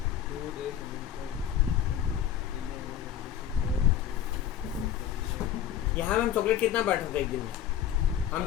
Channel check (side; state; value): right; quieter; 10.0 dB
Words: 2 days यहाँ में हम चॉकलेट कितना बांट रहा था एक दिन में, हम